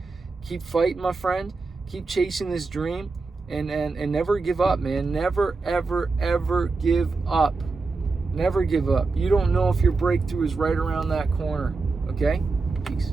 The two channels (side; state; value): left; quieter; 4.0 dB